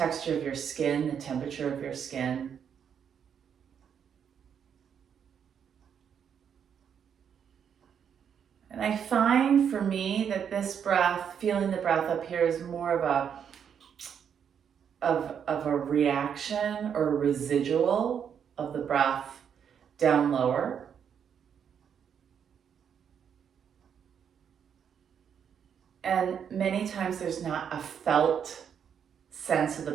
of your skin, the temperature of your skin. And I find for me that this breath, feeling the breath up here, is more of a reaction or a residual of the breath down lower. And many times there's not a felt sense of the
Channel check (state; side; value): quieter; left; 7.9 dB